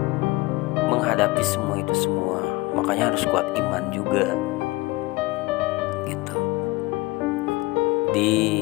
menghadapi semua itu semua. Makanya harus kuat iman juga gitu.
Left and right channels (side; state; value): right; quieter; 21.6 dB